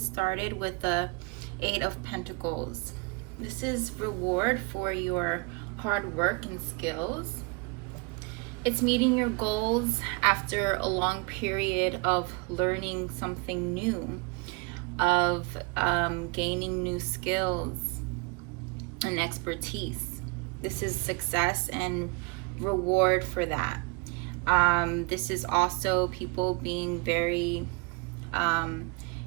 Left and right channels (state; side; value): quieter; left; 28.1 dB